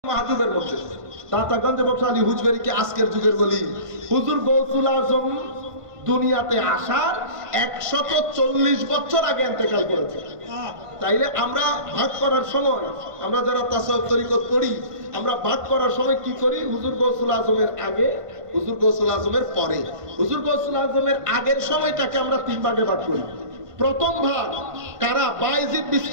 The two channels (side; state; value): left; late; 1.5 ms